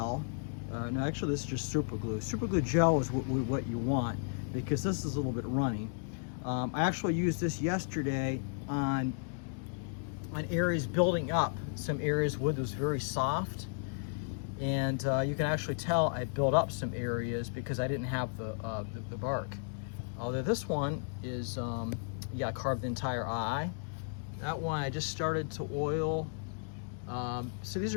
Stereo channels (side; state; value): right; silent; digital silence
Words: No, actually this is just super glue. Super glue gel is what you want because this is a little bit runny. I actually used this yesterday on areas building up. Some areas wood was very soft, and you can actually tell I built up some areas because I didn't have the bark. Although this one is, yeah, I carved the entire eye. That one I just started to oil. So these